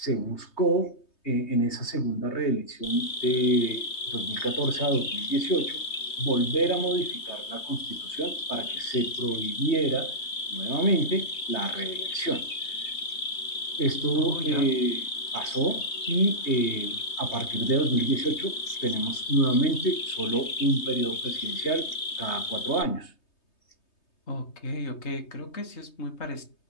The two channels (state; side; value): late; right; 3.2 ms